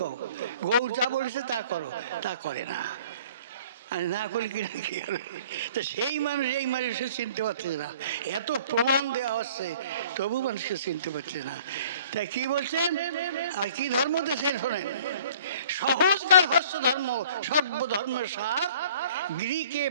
কও। গৌর যা বলেছে তা করো, তা করে না। আর না করলে কি না কি হবে? তো সেই মানুষ এই মানুষকে চিনতে পারছে না, এত প্রমাণ দেওয়া হচ্ছে তবু মানুষকে চিনতে পারছে না। তাই কি বলছেন আর কি ধর্ম দেশের শোনেন, সহজকার হস্য ধর্ম সর্বধর্মের সার, গৃহকে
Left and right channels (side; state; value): both; inverted; correlation -0.51